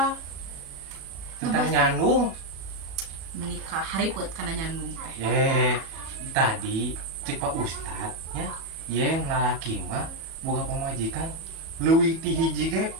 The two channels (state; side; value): late; left; 37 ms